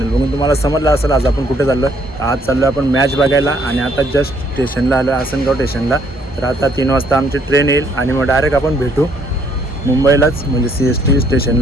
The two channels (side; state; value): both; normal; correlation 0.66